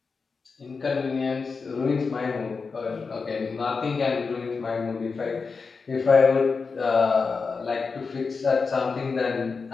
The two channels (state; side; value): quieter; right; 4.8 dB